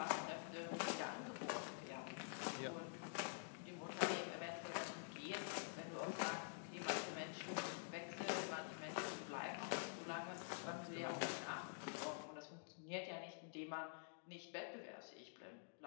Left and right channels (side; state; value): right; silent; digital silence